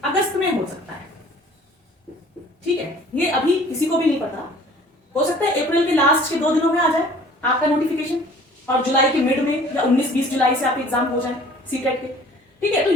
अगस्त में हो सकता है। ठीक है, ये अभी किसी को भी नहीं पता, हो सकता है अप्रैल के लास्ट के 2 दिनों में आ जाए आपका नोटिफिकेशन और जुलाई के मिड में या 19-20 जुलाई से आपके एग्जाम हो जाए सीटेट के। ठीक है, तो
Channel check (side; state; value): both; normal; correlation 0.51